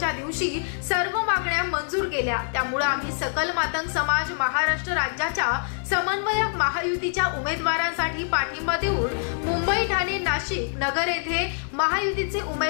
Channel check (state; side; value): silent; right; digital silence